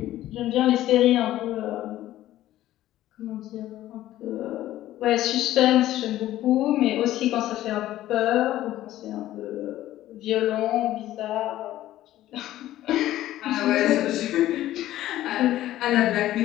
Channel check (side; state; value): right; quieter; 14.1 dB